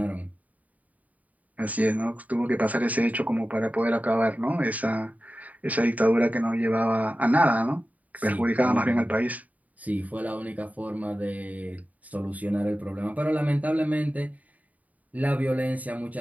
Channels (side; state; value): left; late; 0.072 ms